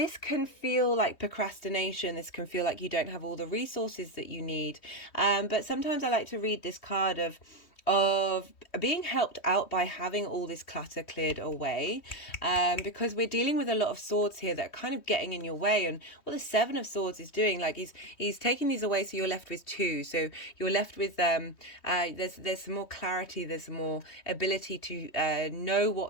can feel like procrastination. This can feel like you don't have all the resources that you need. But sometimes I like to read this card of being helped out by having all this clutter cleared away, because we're dealing with a lot of swords here that are kind of getting in your way. And what the 7 of Swords is doing, like he's taking these away, so you're left with 2. So you're left with there's some more clarity, there's some more ability to know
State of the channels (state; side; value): late; right; 3.1 ms